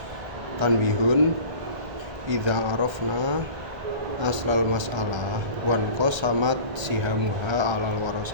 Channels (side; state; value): left; late; 1.3 ms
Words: Tanbihun idza arafna aslal mas'alah wan qasamat sihamuha alal